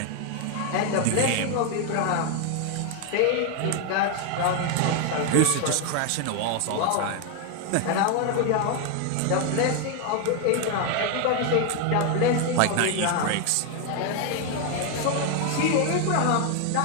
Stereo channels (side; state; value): both; different; correlation 0.01